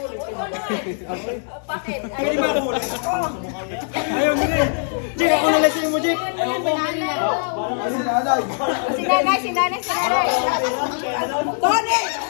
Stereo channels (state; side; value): silent; right; 65 dB below the other